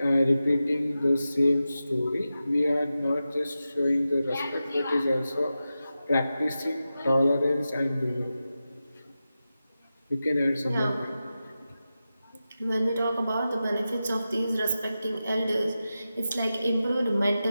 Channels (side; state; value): both; inverted; correlation -0.92